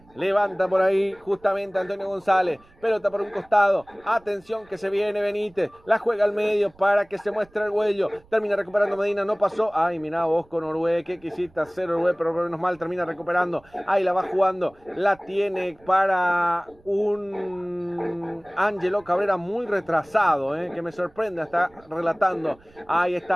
Levanta por ahí justamente Antonio González. Pelota por un costado. Atención que se viene Benítez. La juega al medio para que se muestre el Güello. Termina recuperando Medina. No pasó. Ay, mirá vos con Orue. ¿Qué quisiste hacer Orue? Pero menos mal termina recuperando. Ahí la va jugando. La tiene para un Ángelo Cabrera muy retrasado. Que me sorprende. Está relatando. Ahí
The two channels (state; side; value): noise; right; rumble, 29 dB below the sound